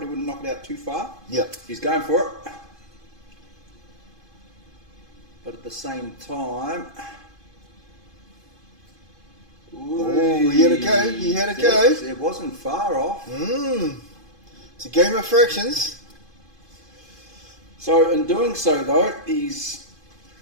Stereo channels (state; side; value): late; left; 2.5 ms